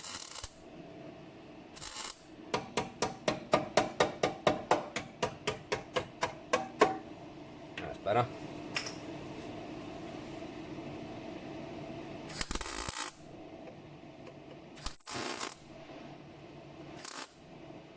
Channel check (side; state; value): both; identical; correlation 1.00